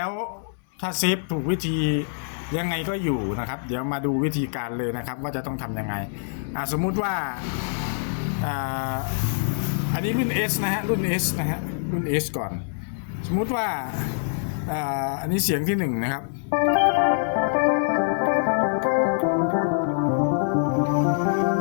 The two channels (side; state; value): right; silent; 60 dB below the other